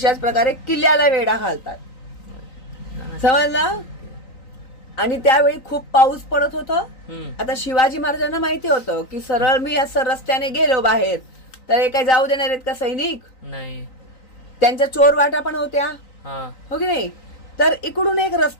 प्रकारे किल्ल्याला वेढा घालतात. समजलं? आणि त्यावेळी खूप पाऊस पडत होता. आता शिवाजी महाराजांना माहिती होतं की सरळ मी असं रस्त्याने गेलो बाहेर तर हे काय जाऊ देणार आहेत का सैनिक? नाही. त्यांच्या चोर वाटा पण होत्या, हो की नाही? तर इकडून एक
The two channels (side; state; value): right; late; 3.9 ms